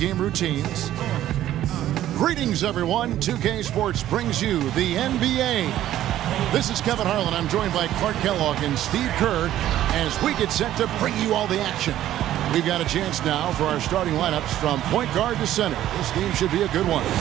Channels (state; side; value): quieter; left; 12.8 dB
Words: routines. Greetings, everyone. 2K Sports brings you the NBA. This is Kevin Harlan. I'm joined by Clark Kellogg and Steve Kerr as we get set to bring you all the action. We've got a chance now for our starting lineups from point guard to center. This game should be a good one.